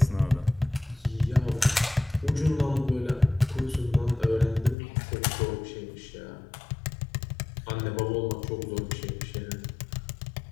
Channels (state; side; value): drops out; right; at 4.8 s